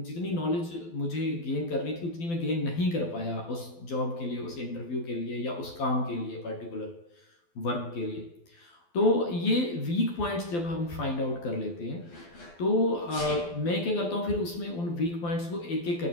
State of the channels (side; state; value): right; late; 12 ms